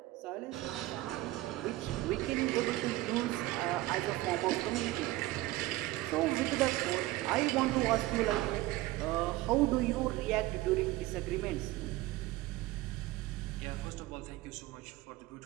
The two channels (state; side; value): quieter; left; 17.9 dB